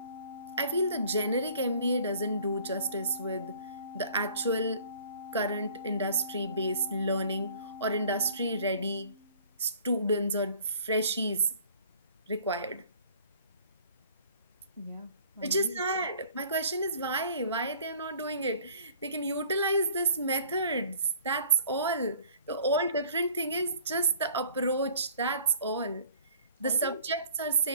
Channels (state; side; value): inverted; both; correlation -0.52